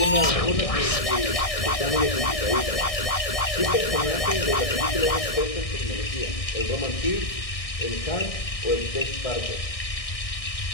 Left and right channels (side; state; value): right; late; 1.6 ms